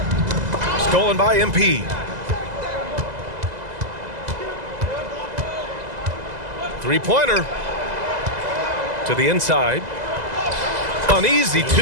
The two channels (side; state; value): left; late; 2.0 ms